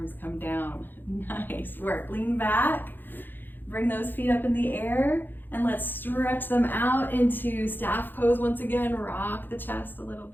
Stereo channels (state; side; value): late; right; 0.093 ms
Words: come down. Nice work. Lean back, bring those feet up in the air, and let's stretch them out into staff pose once again. Rock the chest a little